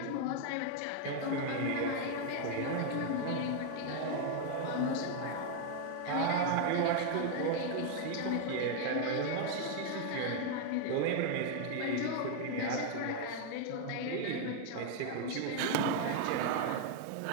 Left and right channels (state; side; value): different; both; correlation 0.00